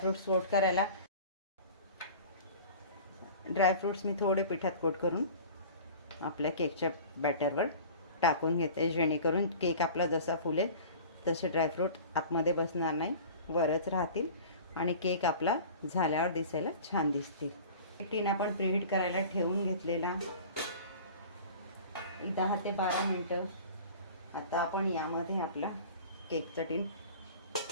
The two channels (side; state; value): both; inverted; correlation -0.41